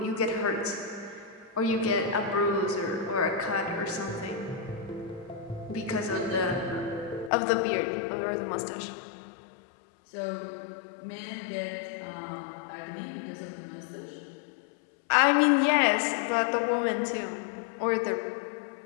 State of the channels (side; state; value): right; drops out; at 7.3 s